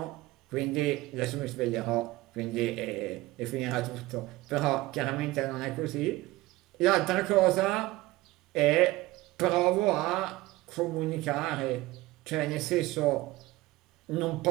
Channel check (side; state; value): left; quieter; 18.8 dB